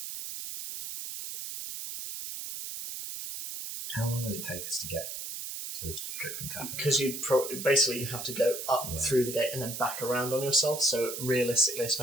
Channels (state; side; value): noise; right; hiss, 7 dB below the sound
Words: How long will it take us to get to the Dripping Tavern? Because you basically have to go up through the gate and then back around on yourself. So realistically,